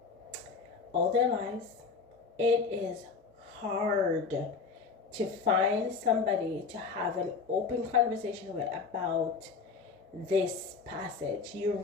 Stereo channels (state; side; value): quieter; right; 5.1 dB